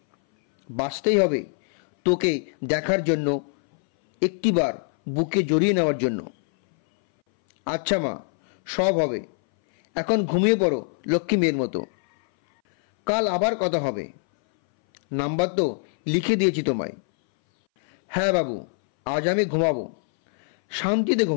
বাঁচতেই হবে তোকে দেখার জন্য, একটিবার বুকে জড়িয়ে নেওয়ার জন্য। আচ্ছা মা, সব হবে। এখন ঘুমিয়ে পড়ো লক্ষ্মী মেয়ের মতো। কাল আবার কথা হবে। নাম্বার তো লিখে দিয়েছি তোমায়। হ্যাঁ বাবু, আজ আমি ঘুমাবো, শান্তিতে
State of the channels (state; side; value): silent; right; 61 dB below the other